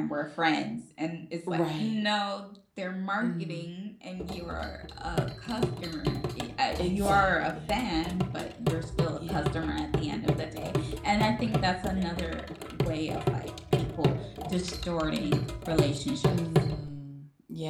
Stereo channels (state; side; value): identical; both; correlation 1.00